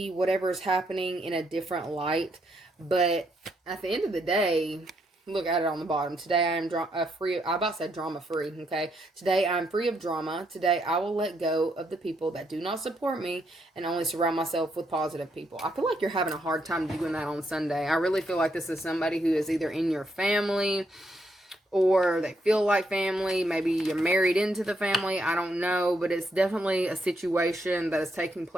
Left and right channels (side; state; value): both; normal; correlation 0.76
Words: whatever is happening in a different light, but at the end of the day, look at it on the bottom. Today I am drama free, okay? Today I'm free of drama. Today I will let go of the people that do not support me and only surround myself with positive people. I feel like you're having a hard time doing that on Sunday. I really feel like this is somebody who is either in your family, or they feel like family. Maybe you're married into the family. I don't know. But it's definitely a situation that is taking